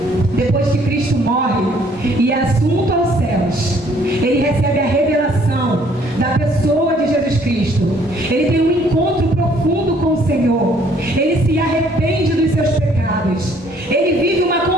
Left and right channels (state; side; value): normal; both; correlation 0.62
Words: depois que Cristo morre e é assunto aos céus, ele recebe a revelação da pessoa de Jesus Cristo. Ele tem um encontro profundo com o Senhor. Ele se arrepende dos seus pecados. Ele vive uma